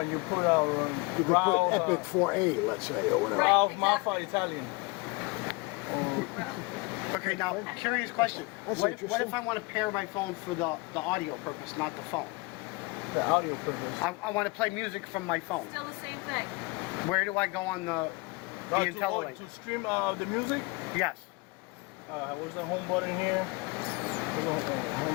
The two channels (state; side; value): quieter; right; 26.0 dB